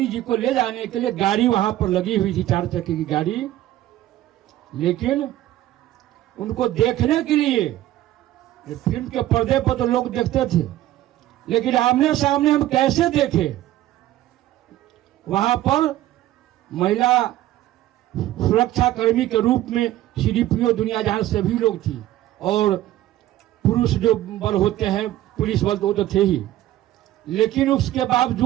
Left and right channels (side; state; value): left; quieter; 14.2 dB